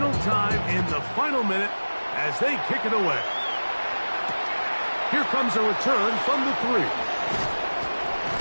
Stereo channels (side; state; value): both; inverted; correlation -1.00